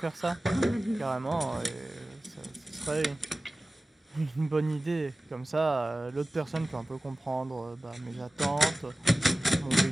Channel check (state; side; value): normal; both; correlation 0.96